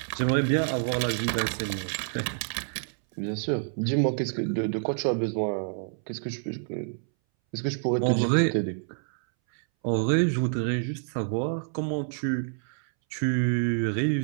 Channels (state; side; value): silent; left; 60 dB below the other